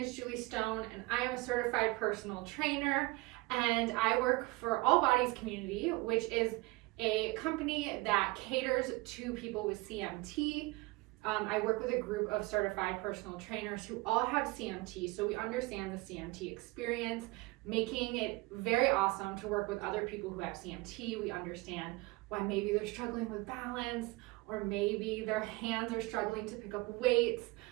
Julie Stone and I am a certified personal trainer and I work for All Bodies Community, which is a company that caters to people with CMT. I work with a group of certified personal trainers who all have CMT, so we understand the CMT experience, making it very awesome to work with other people who have CMT. We understand why maybe they're struggling with balance or maybe their hands are struggling to pick up weights.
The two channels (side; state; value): left; quieter; 22.8 dB